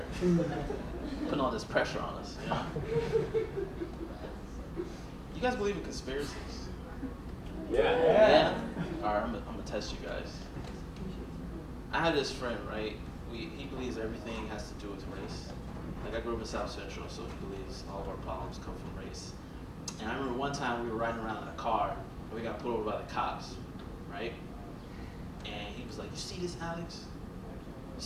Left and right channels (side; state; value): both; identical; correlation 1.00